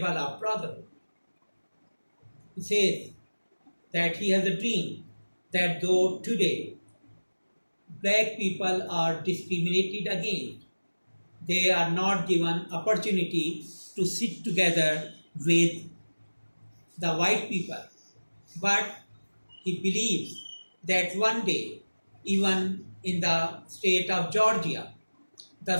of brotherhood. He says that he has a dream that though today black people are discriminated against, they are not given opportunity to sit together with the white people, but he believes that one day, even in the state of Georgia, the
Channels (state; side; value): inverted; both; correlation -1.00